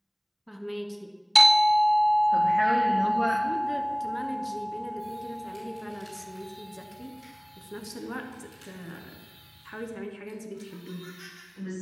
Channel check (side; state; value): both; identical; correlation 1.00